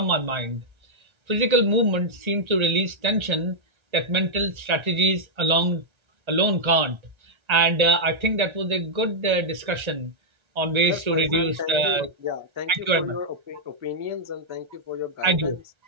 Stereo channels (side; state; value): left; late; 1.3 ms